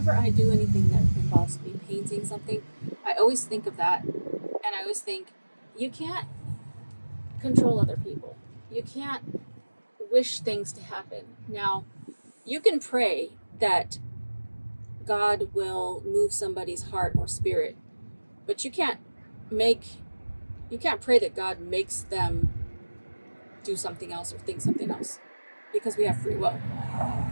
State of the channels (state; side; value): inverted; both; correlation -1.00